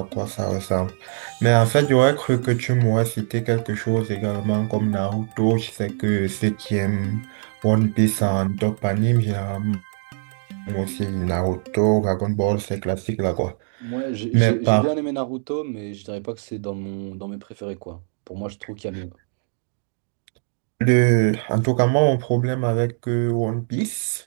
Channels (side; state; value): left; silent; digital silence